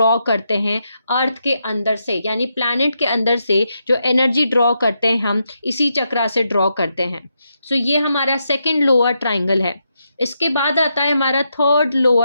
करते हैं अर्थ के अंदर से, यानी प्लैनेट के अंदर से जो एनर्जी ड्रॉ करते हैं हम इसी चक्रा से ड्रॉ करते हैं। सो ये हमारा सेकंड लोअर ट्राइंगल है। इसके बाद आता है हमारा थर्ड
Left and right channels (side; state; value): both; inverted; correlation -0.83